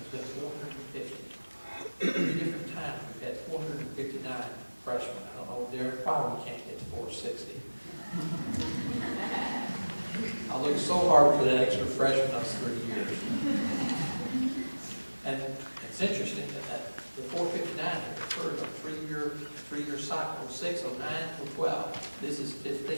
been 450. 3 different times we've had 459 freshmen. I don't know, Derek, probably can't get to 460. I looked so hard for that extra freshman those 3 years. And it's interesting that the 459 occurred on a three-year cycle, 6, 09, 12. This is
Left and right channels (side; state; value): both; inverted; correlation -1.00